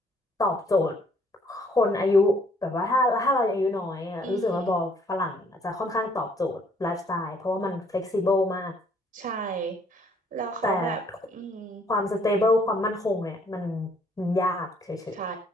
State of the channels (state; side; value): normal; both; correlation 0.64